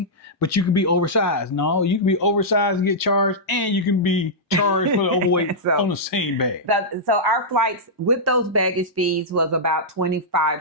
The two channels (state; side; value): normal; both; correlation -0.11